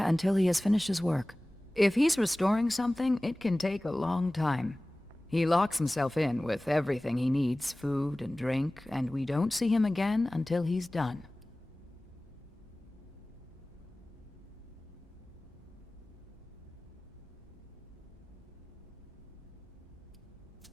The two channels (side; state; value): both; normal; correlation 0.98